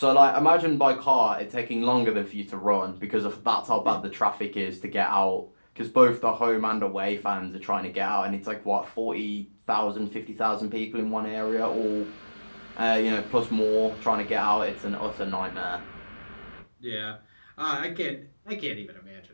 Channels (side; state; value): both; inverted; correlation -1.00